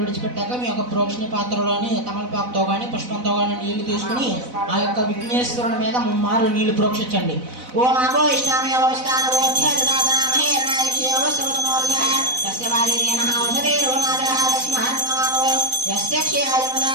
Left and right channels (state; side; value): late; left; 4.0 ms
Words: విడిచిపెట్టాక మీ యొక్క ప్రోక్షణ పాత్రలోని తమలపాకుతో కానీ పుష్పంతో కానీ నీళ్లు తీసుకుని ఆ యొక్క విఘ్నేశ్వరుని మీద ముమ్మారు నీళ్లు ప్రోక్షించండి. ఓం అభో ఇష్టామి అవస్థాన